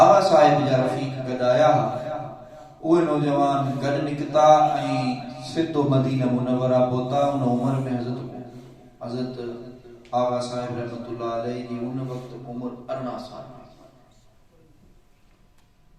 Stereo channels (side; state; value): both; identical; correlation 1.00